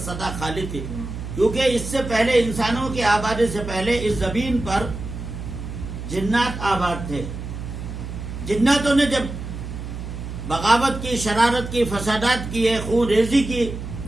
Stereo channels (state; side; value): noise; right; hum, 8 dB below the sound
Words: سدا خالی تھی، کیونکہ اس سے پہلے انسانوں کی آبادی سے پہلے اس زمین پر جنات آباد تھے۔ جناتوں نے جب بغاوت کی، شرارت کی، فسادات کیے، خون ریزی کی،